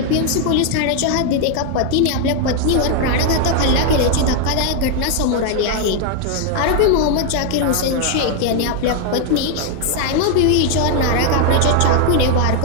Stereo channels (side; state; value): both; different; correlation 0.00